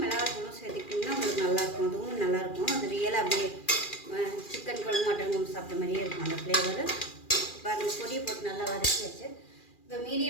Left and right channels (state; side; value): late; right; 2.4 ms